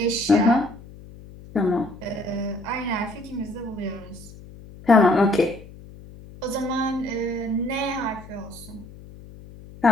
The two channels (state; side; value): noise; left; hum, 18 dB below the sound